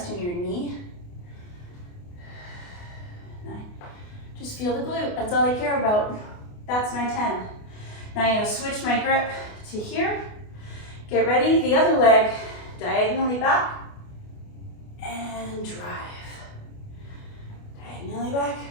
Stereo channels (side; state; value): right; late; 28 ms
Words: in your knee. 9, just feel the glute, that's all I care about. That's my 10. Now I'm gonna switch my grip to here. Get ready, the other leg, diagonally back, and drive. Diagonally back,